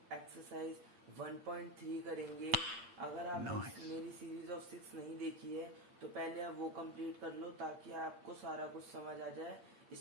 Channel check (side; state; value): left; late; 8.6 ms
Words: एक्सरसाइज 1.3 करेंगे। अगर आप मेरी सीरीज ऑफ 6 नहीं देखी है तो पहले आप वो कंप्लीट कर लो ताकि आपको सारा कुछ समझ आ जाए